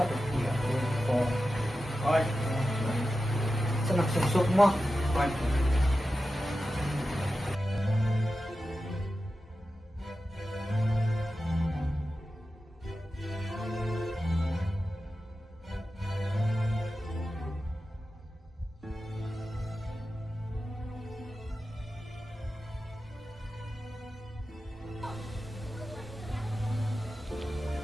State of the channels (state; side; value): normal; both; correlation 0.92